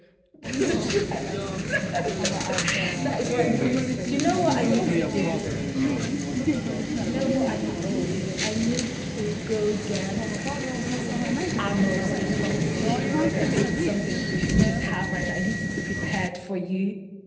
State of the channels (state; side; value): identical; both; correlation 1.00